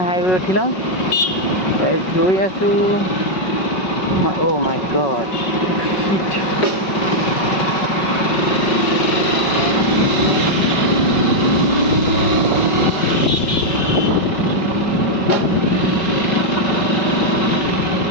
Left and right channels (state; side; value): late; right; 5.4 ms